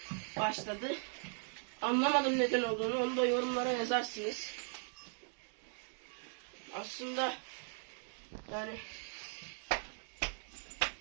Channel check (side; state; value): left; silent; 52 dB below the other